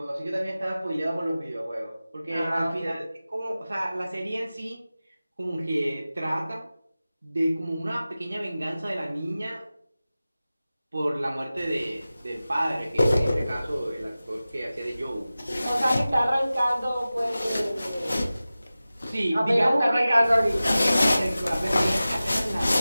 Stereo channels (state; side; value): inverted; both; correlation -0.96